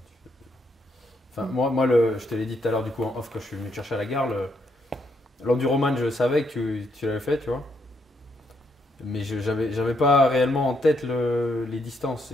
Moi, je te l'ai dit tout à l'heure, du coup, en off, quand je suis venu te chercher à la gare, l'enduroman, je savais que tu l'avais fait, tu vois. Mais j'avais pas réellement en tête les distances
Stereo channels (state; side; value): normal; both; correlation 0.76